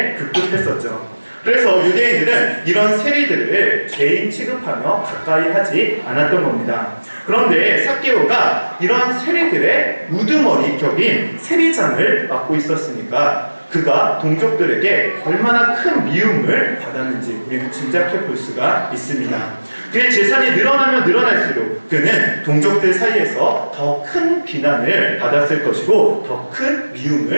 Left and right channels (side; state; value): both; inverted; correlation -1.00